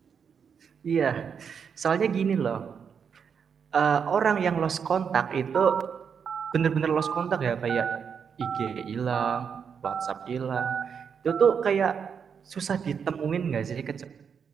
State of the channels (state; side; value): quieter; left; 6.8 dB